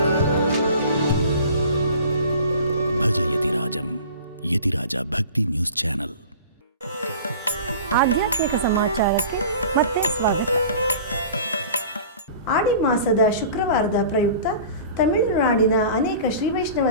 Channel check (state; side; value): inverted; both; correlation -0.41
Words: ಸಮಾಜಂ ಯತಿರಾಜ ಭಕ್ತಿ ನ್ಯೂಸ್ ಚಾನೆಲ್. ಆಧ್ಯಾತ್ಮಿಕ ಸಮಾಚಾರಕ್ಕೆ ಮತ್ತೆ ಸ್ವಾಗತ. ಆಡಿ ಮಾಸದ ಶುಕ್ರವಾರದ ಪ್ರಯುಕ್ತ ತಮಿಳುನಾಡಿನ ಅನೇಕ ಶ್ರೀ ವೈಷ್ಣವ